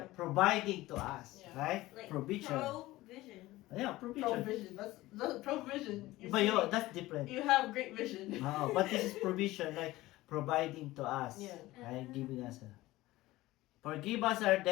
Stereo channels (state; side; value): quieter; right; 17.9 dB